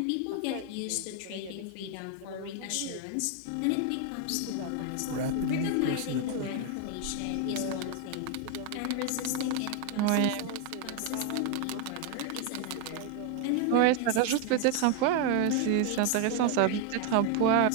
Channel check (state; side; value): different; both; correlation 0.01